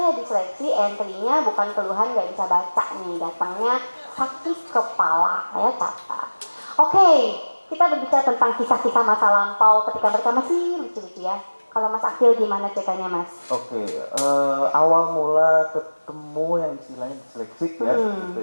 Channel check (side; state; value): both; inverted; correlation -1.00